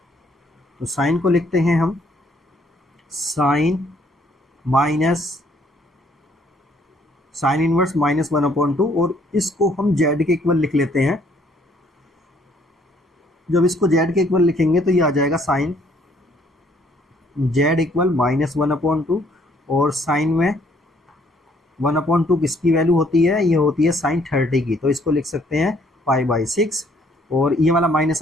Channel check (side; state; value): both; normal; correlation 0.64